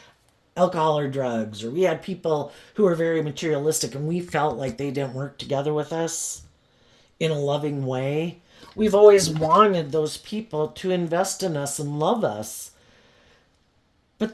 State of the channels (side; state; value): both; identical; correlation 1.00